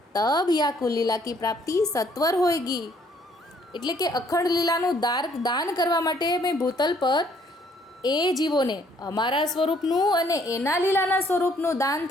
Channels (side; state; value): both; normal; correlation 0.64